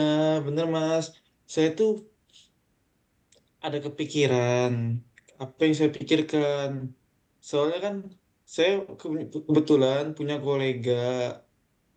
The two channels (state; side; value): identical; both; correlation 1.00